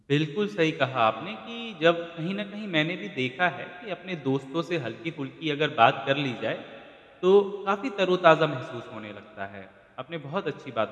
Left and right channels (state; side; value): identical; both; correlation 1.00